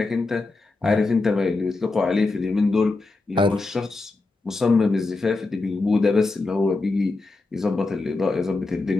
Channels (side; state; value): right; quieter; 3.4 dB